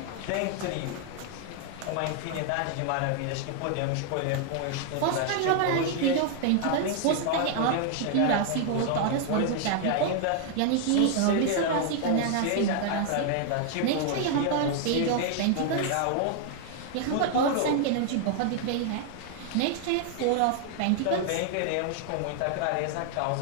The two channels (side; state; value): both; different; correlation 0.00